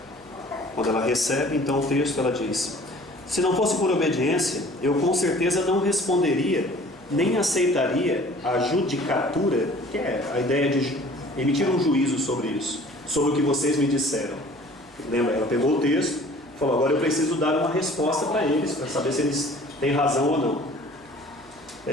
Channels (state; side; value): noise; right; hum, 28 dB below the sound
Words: Quando ela recebe, então, o texto, ela diz: se não fosse por obediência, eu com certeza não responderia, nem aceitaria a judicatura, que é a ideia de emitir um juízo sobre isso, sobre o que vocês me disseram. Lembra, ela pegou o texto, falou: agora eu preciso dar uma resposta para eles, para saber se eles têm razão ou não.